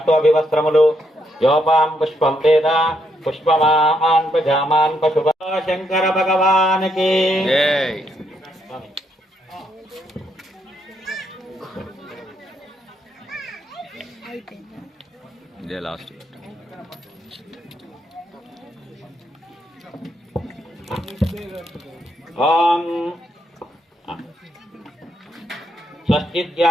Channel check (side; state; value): both; normal; correlation 0.76